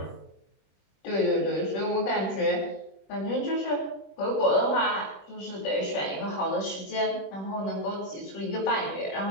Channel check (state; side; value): late; right; 21 ms